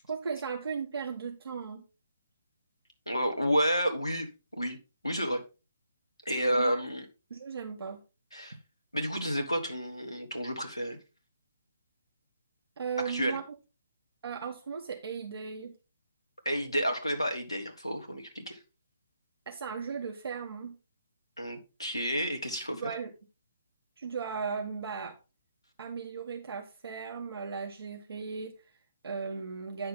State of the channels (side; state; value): both; inverted; correlation -0.79